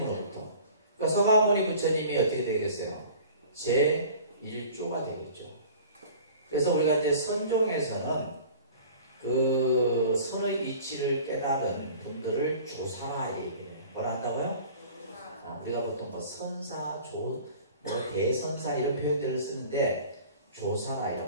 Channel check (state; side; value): inverted; both; correlation -0.45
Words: 그러니까 서가모니 부처님이 어떻게 되겠어요? 제1조가 되겠죠. 그래서 우리가 이제 선종에서는 그 선의 이치를 깨달은 분들을 조사라 얘기해요. 뭐라 한다고요? 우리가 보통 뭐 선사, 대선사 이런 표현들을 쓰는데 조사라